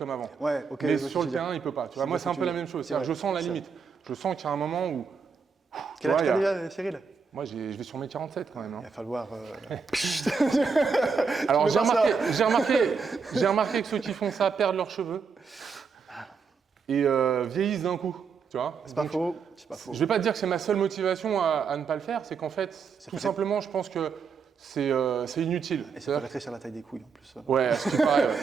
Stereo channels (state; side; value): quieter; left; 5.6 dB